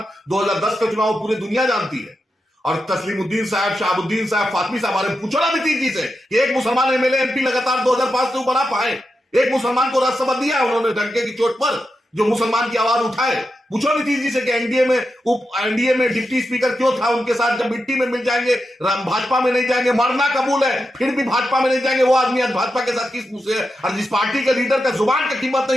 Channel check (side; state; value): both; normal; correlation 0.88